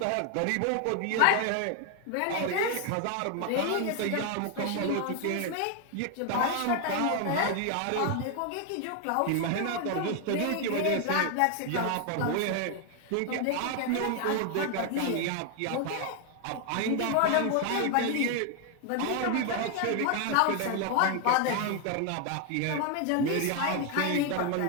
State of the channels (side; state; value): both; different; correlation 0.01